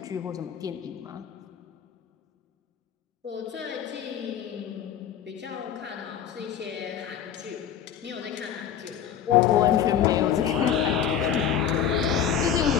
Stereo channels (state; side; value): quieter; right; 8.8 dB